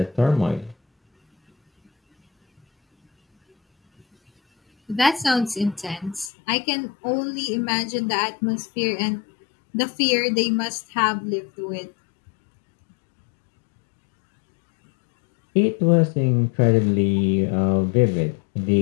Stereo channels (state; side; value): drops out; right; at 6.3 s